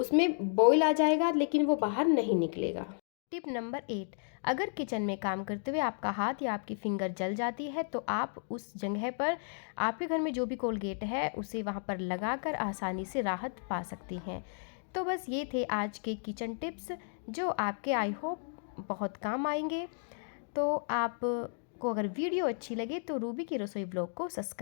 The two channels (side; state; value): right; silent; digital silence